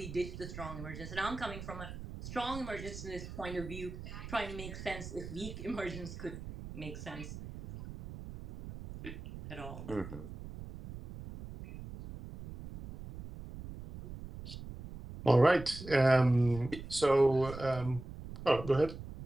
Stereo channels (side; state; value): right; noise; rumble, 11 dB below the sound